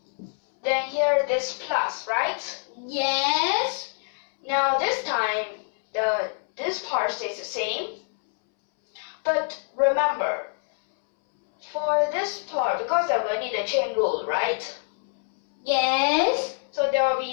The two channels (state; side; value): silent; right; 61 dB below the other